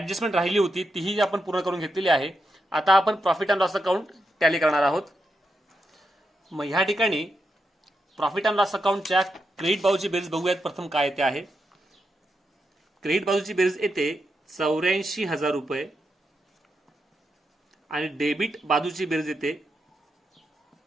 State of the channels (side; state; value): both; normal; correlation 0.85